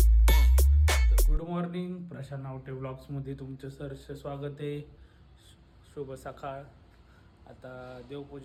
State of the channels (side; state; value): both; identical; correlation 1.00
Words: गुड मॉर्निंग, प्रशांत नावटे ब्लॉग्समध्ये तुमचं सहर्ष स्वागत आहे. शुभ सकाळ. आता